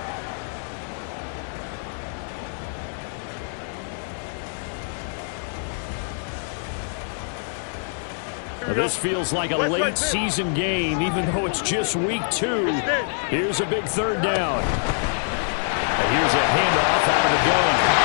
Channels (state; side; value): silent; right; digital silence